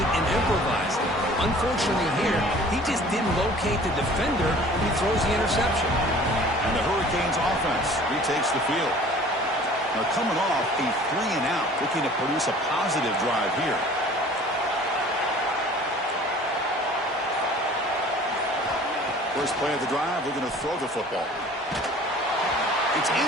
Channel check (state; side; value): normal; both; correlation 0.48